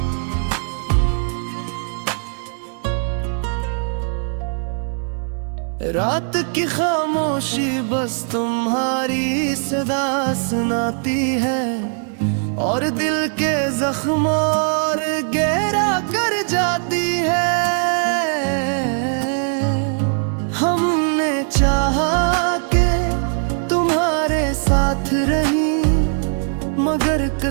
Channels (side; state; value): left; silent; 57 dB below the other